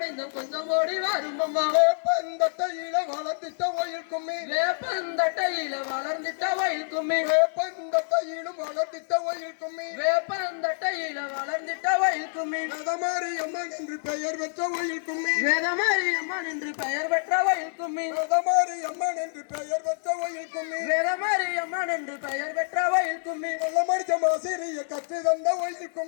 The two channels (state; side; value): silent; right; digital silence